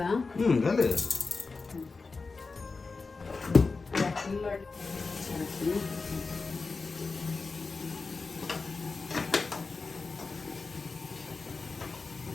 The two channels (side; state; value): right; quieter; 4.2 dB